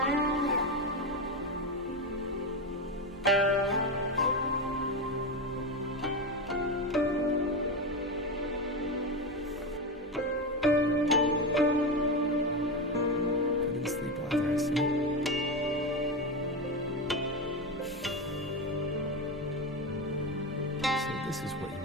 This is what you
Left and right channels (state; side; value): normal; both; correlation 0.15